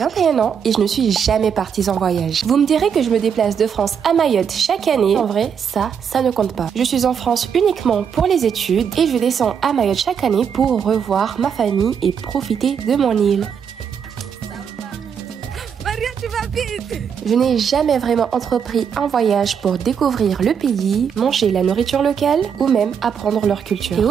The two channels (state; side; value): quieter; left; 7.3 dB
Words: ans et je ne suis jamais partie en voyage. Vous me direz que je me déplace de France à Mayotte chaque année. En vrai, ça ne compte pas. Je suis en France uniquement pour les études et je descends à Mayotte chaque année pour revoir ma famille et profiter de mon île. Je n'ai jamais vraiment entrepris un voyage pour découvrir le pays, manger la nourriture locale ou même apprendre leur culture. Et